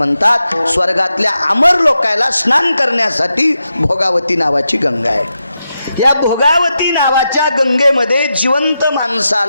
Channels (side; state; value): both; inverted; correlation -0.87